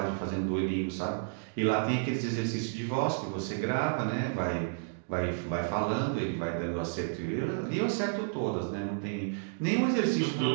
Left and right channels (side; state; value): left; silent; digital silence